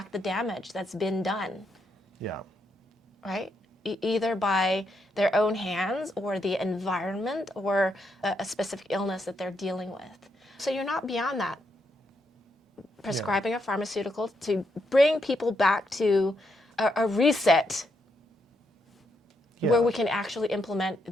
the damage that's been done. Yeah. Right? Either by their own hands or the environment or a specific illness that they're dealing with. So you're not beyond that. Prescribing a pharmaceutical to bring people back to a reset where we can actually implement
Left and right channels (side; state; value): both; normal; correlation 0.79